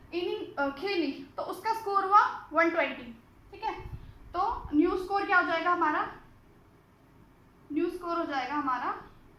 इनिंग खेली तो उसका स्कोर हुआ 120, ठीक है। तो न्यू स्कोर क्या हो जाएगा हमारा, न्यू स्कोर हो जाएगा हमारा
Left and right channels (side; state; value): both; identical; correlation 1.00